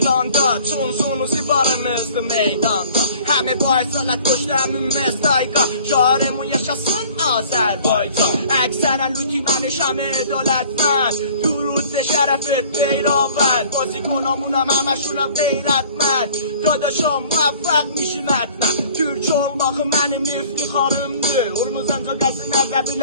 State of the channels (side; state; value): both; inverted; correlation -0.51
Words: Çunsunuzu varımızdı meydanda. Həmi bu aysalət qoşdu həmin mestayqa. Şarımın yaşasın Azərbaycan. Əksərən lütüməni şəmi dövlətmən. درود شرفت پیراون بازی کنامونم همشونم غیرتمند داداشام موفق میشیم حتما Türk olmak benim iftiharımdır Urmuzanca qəzinlərdə